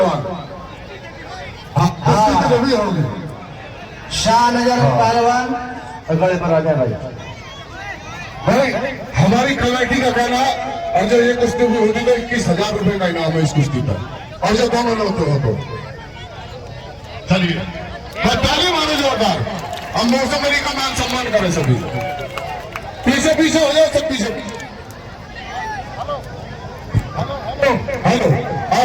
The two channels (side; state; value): both; identical; correlation 1.00